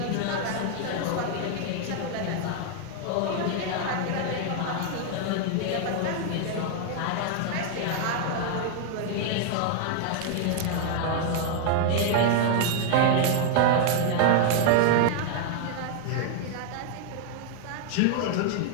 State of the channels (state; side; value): different; both; correlation 0.00